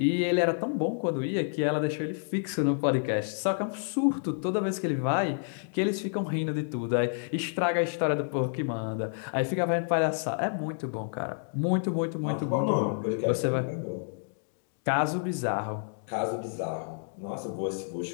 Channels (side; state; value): right; silent; digital silence